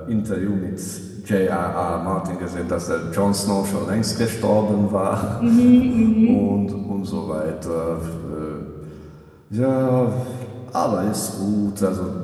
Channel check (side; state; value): both; identical; correlation 1.00